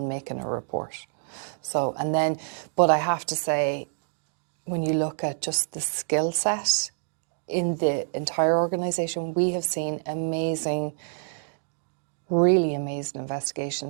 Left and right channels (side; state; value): left; silent; digital silence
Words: making a report. So, and then, but I have to say, when you look at just the skill set in the entire organisation, we have seen really amazing